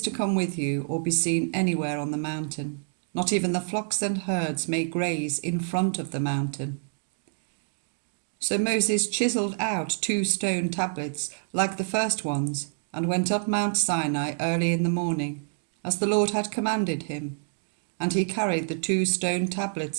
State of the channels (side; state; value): left; silent; digital silence